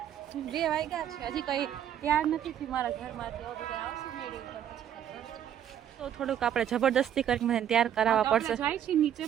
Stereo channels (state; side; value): quieter; left; 10.0 dB